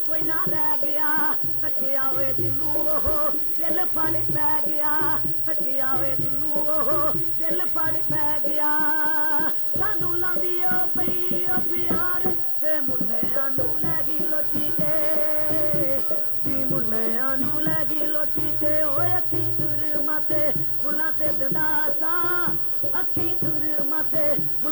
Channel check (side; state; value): left; late; 0.62 ms